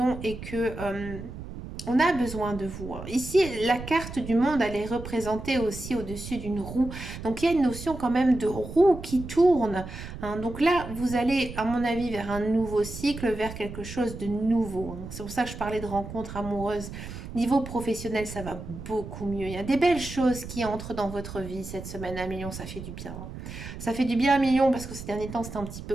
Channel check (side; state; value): right; noise; rumble, 10 dB below the sound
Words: et que on a besoin de vous. Ici, la carte du monde, elle est représentée aussi au-dessus d'une roue. Donc, il y a une notion quand même de roue qui tourne, hein. Donc là, vous allez, à mon avis, vers un nouveau cycle, vers quelque chose de nouveau, hein. C'est pour ça que je parlais de rencontres amoureuses. Niveau professionnel, ça va beaucoup mieux. Il y a des belles choses qui entrent dans votre vie cette semaine à million. Ça fait du bien, hein. Ça fait du bien à million parce que ces derniers temps, c'était un petit peu